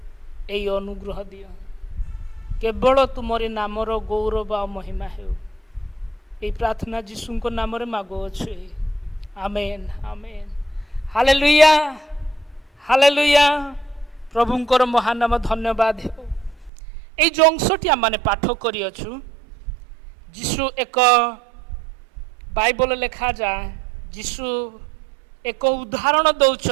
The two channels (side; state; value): left; drops out; at 16.7 s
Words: एई अनुग्रह दियो केवल तुमरी नामर गौरव आ महिमा हेउ एई प्रार्थना जीशुंको नाम रे मागो अछि आमेन आमेन हालेलुया हालेलुया प्रभुंकर महानाम धन्यवाद हेउ एई जो अंशटी आम पाठ करी अछु जीशु एक बाइबल लेखा जाए जीशु एक उदाहरण